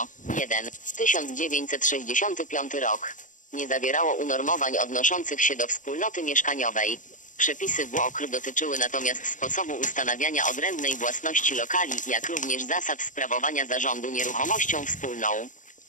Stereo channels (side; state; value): right; late; 0.37 ms